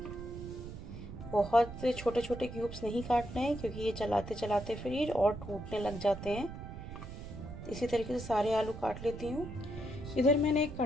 बहुत छोटे छोटे क्यूब्स नहीं काटने हैं क्योंकि ये चलाते चलाते फिर ये और टूटने लग जाते हैं। इसी तरीके से सारे आलू काट लेती हूँ। इधर मैंने एक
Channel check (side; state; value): right; noise; rumble, 10 dB below the sound